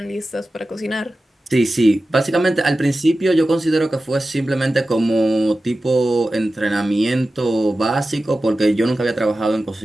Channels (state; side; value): normal; both; correlation 0.94